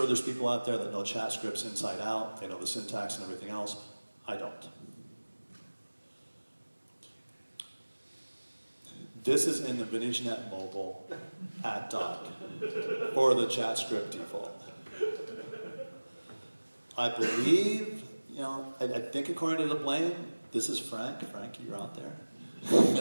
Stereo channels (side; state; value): both; inverted; correlation -1.00